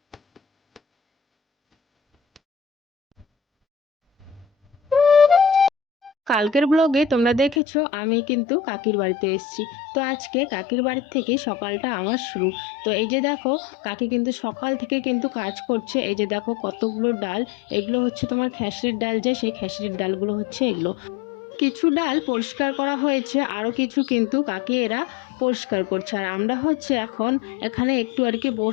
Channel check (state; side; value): drops out; right; at 7.6 s